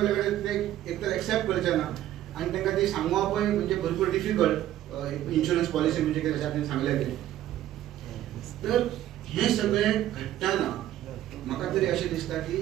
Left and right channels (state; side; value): quieter; left; 13.0 dB